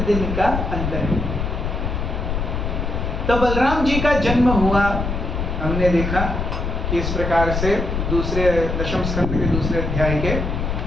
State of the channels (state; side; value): noise; left; rumble, 2 dB below the sound